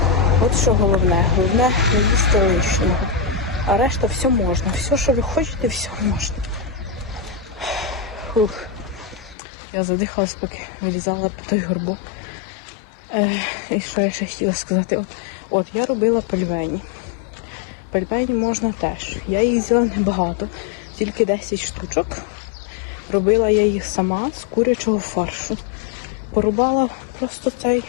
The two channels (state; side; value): drops out; right; at 9.3 s